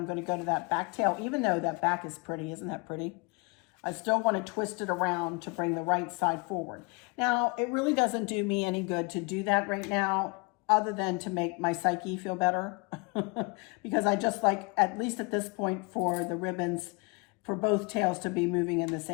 going to go to that back tail, even though that back is pretty. Isn't that pretty? I still want to twist it around to bring the right side forward. Now, it really doesn't do me any good to do that right now, other than to make my psyche feel better. Because I just like, at least at this point, for the ribbons, for both tails to be moving in the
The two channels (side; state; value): right; quieter; 29.9 dB